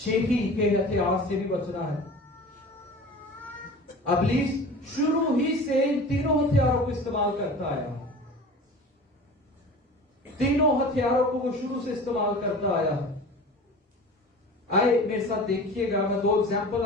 के हथियार से भी बचना है। इब्लीस शुरू ही से इन तीनों हथियारों को इस्तेमाल करता आया। तीनों हथियारों को वो शुरू से इस्तेमाल करता आया। आए मेरे साथ देखिएगा, मैं 2 एग्जाम्पल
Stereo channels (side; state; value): both; normal; correlation 0.38